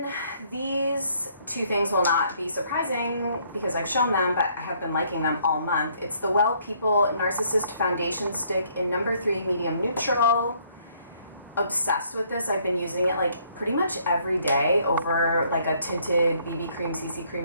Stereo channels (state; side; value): inverted; both; correlation -0.65